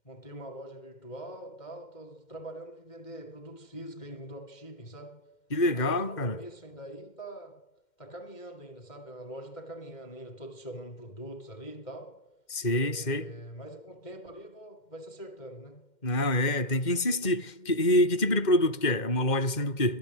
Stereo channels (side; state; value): right; late; 2.1 ms